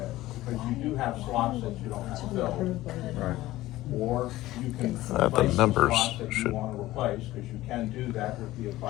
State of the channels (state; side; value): quieter; right; 16.5 dB